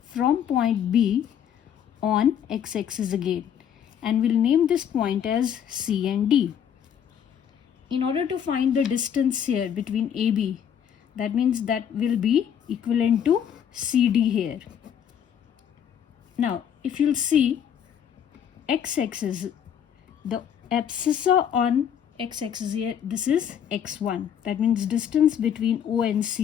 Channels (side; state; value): right; quieter; 8.7 dB